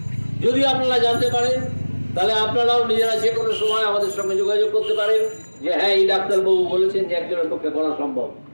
যদি আপনারা জানতে পারেন, তাহলে আপনারাও নিজেরা যে কোনো সময় আমাদের সঙ্গে যোগাযোগ করতে পারেন যে হ্যাঁ এই ডাক্তারবাবু বলেছেন যে একজনের পক্ষে করা সম্ভব।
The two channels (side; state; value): both; inverted; correlation -1.00